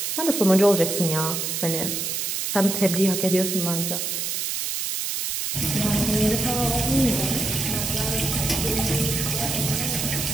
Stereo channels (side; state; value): right; noise; hiss, 2 dB below the sound